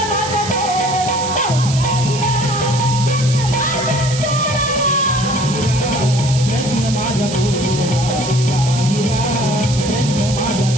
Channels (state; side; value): noise; right; hiss, 8 dB below the sound